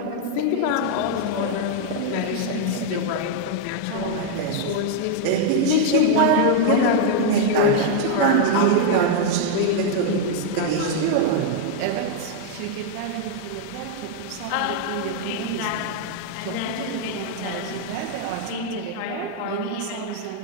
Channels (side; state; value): both; different; correlation 0.00